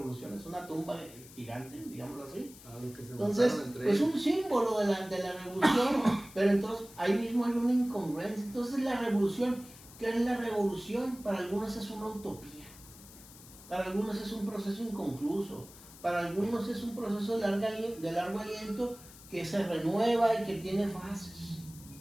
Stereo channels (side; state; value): left; noise; hiss, 19 dB below the sound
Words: es una tumba gigante, digámoslo así. Entonces, es un símbolo de la revolución, pero entonces ahí mismo hay una incongruencia. Entonces la revolución, ¿qué es la revolución? Para algunos es una utopía, para algunos es un proceso inconcluso, para algunos es un proceso de largo aliento que se renueva y que tiene fases.